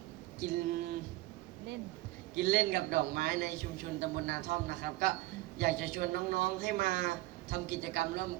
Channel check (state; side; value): quieter; left; 18.9 dB